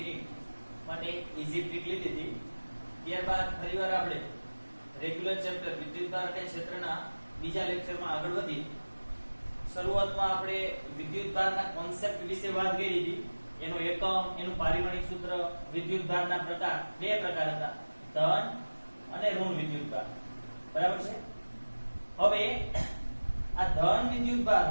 માટે ઈઝી ટ્રીક લીધી હતી. ત્યારબાદ ફરીવાર આપણે રેગ્યુલર ચેપ્ટર વિદ્યુતભાર અને ક્ષેત્રના બીજા લેક્ચરમાં આગળ વધી. શરૂઆતમાં આપણે વિદ્યુતભારના કોન્સેપ્ટ વિશે વાત કરી હતી. એનો એકમ, એનું પારિમાણિક સૂત્ર, વિદ્યુતભારના પ્રકાર, બે પ્રકાર હતા, ધન અને ઋણ વિદ્યુતભાર. બરાબર છે. હવે આ ધન વિદ્યુતભાર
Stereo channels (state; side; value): inverted; both; correlation -1.00